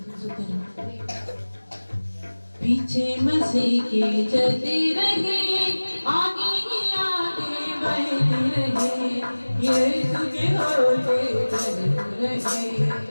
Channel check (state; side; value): inverted; both; correlation -1.00